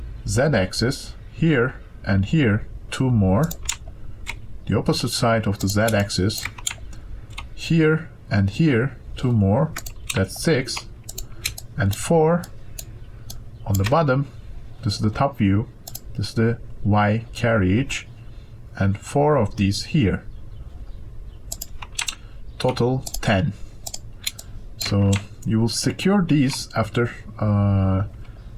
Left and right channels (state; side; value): identical; both; correlation 1.00